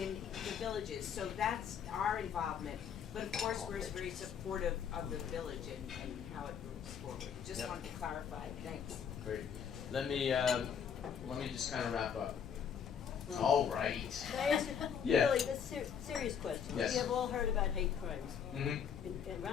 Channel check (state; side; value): quieter; right; 7.6 dB